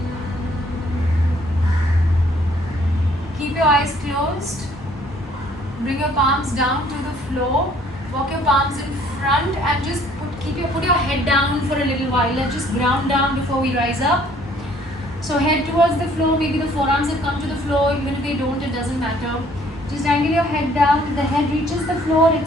Keep your eyes closed. Bring your palms down to the floor. Walk your palms in front and just put your head down for a little while. Let's just ground down before we rise up. So head towards the floor. Maybe the forearms have come to the floor. Even if they don't, it doesn't matter. Just angle your head down. If the head reaches the floor,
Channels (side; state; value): both; normal; correlation 0.60